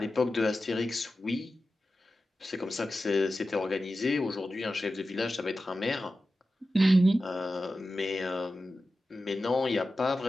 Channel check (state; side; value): normal; both; correlation 0.93